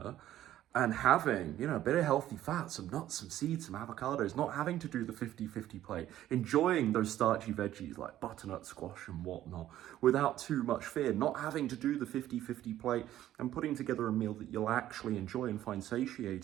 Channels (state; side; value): quieter; left; 12.9 dB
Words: and having, a bit of healthy fat, some nuts, some seeds, some avocados, not having to do the 50-50 plate, enjoying those starchy veggies like butternut squash and whatnot without too much fear, not having to do the 50-50 plate and putting together a meal that you'll actually enjoy and find